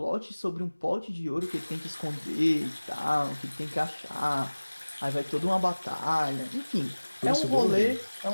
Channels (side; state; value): both; inverted; correlation -1.00